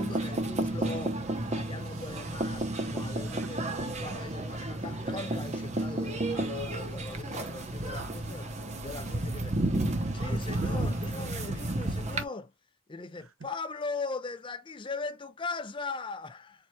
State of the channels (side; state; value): both; normal; correlation 0.59